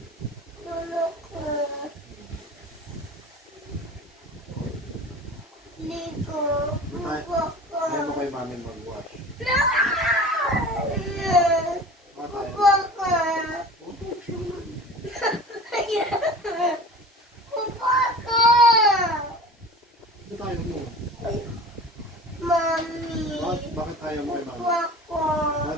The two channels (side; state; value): both; normal; correlation 0.38